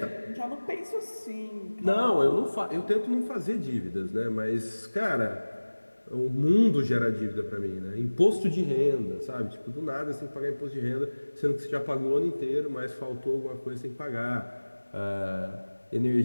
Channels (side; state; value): both; inverted; correlation -1.00